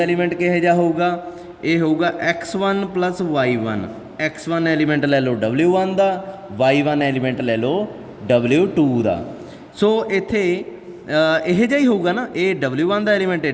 एलीमेंट किहो जिहा होऊगा, ये होऊगा X1 + Y1। X1 एलीमेंट ले लो W1 का, Y1 एलीमेंट ले लो W2 का। सो इत्थे यह जिहा ही होऊगा ना, ये W1 का एलीमेंट है,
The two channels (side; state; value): both; identical; correlation 1.00